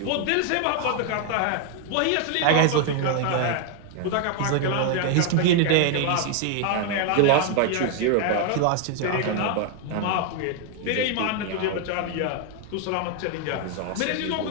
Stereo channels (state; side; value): different; both; correlation 0.00